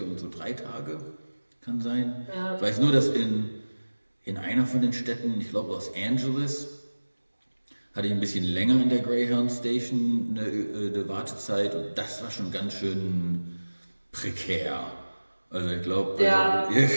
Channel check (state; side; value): inverted; both; correlation -1.00